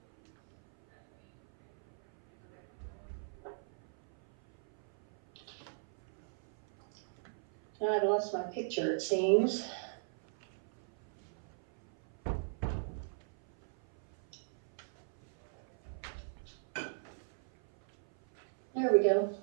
Now I've lost my picture, it seems. There we go.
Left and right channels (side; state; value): left; silent; 53 dB below the other